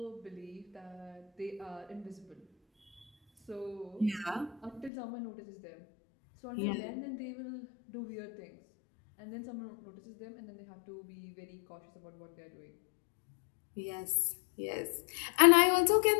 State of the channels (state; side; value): drops out; right; at 4.9 s